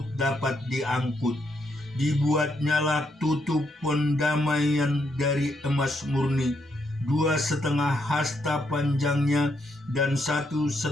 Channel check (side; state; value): both; normal; correlation 0.77